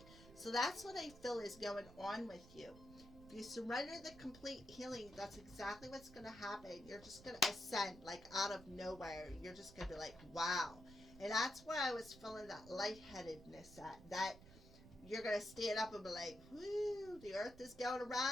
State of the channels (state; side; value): noise; right; rumble, 18 dB below the sound